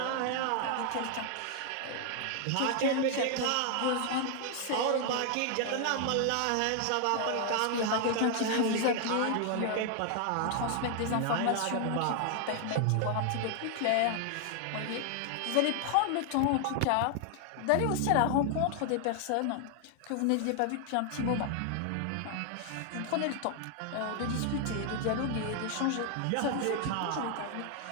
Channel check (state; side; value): different; both; correlation 0.00